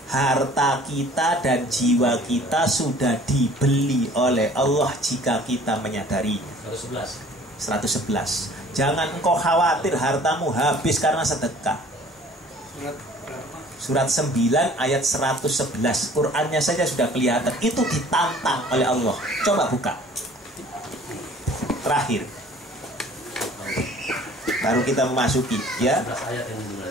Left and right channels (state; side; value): normal; both; correlation 0.51